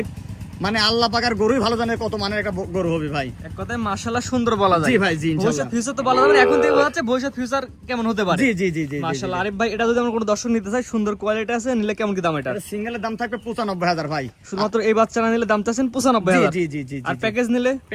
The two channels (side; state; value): both; identical; correlation 1.00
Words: মানে আল্লাহ পাকের গরুই ভালো জানে কত মানের একটা গরু হবে ভাই। এক কথায় মাশাআল্লাহ সুন্দর বলা যায়। জি ভাই, জি ইনশাআল্লাহ। ভবিষ্যৎ ফিউচার তো বলা যাবে না, এখন থেকে বোঝা যাচ্ছে ভবিষ্যৎ ফিউচার কেমন হতে পারে। জি জি জি জি মাশাআল্লাহ। আরিফ ভাই, এটা যদি আমরা কোনো দর্শক নিতে চাই, সুন্দর কোয়ালিটি আছে, নিলে কেমন কি দাম এটা? এটা সিঙ্গেলের দাম থাকবে 95,000 ভাই। শুধুমাত্র এই বাচ্চারা নিলে দাম চাচ্ছেন 95,000। জি জি জি। আর প্যাকেজ নিলে?